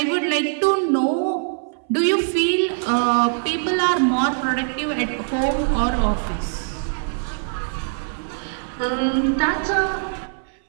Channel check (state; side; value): silent; left; 60 dB below the other